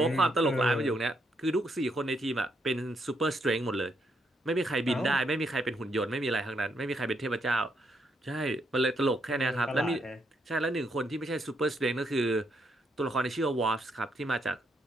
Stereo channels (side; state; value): both; normal; correlation 0.76